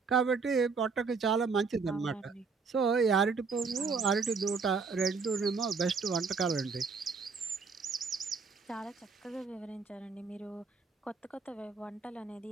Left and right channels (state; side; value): quieter; left; 4.9 dB